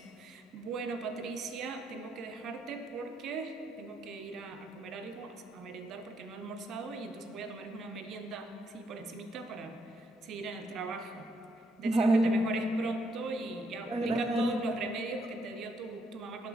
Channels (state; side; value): normal; both; correlation 0.74